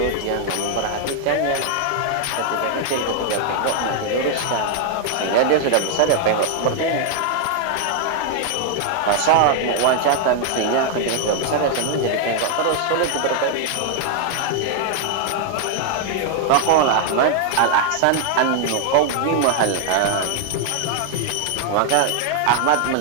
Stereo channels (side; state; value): both; different; correlation 0.00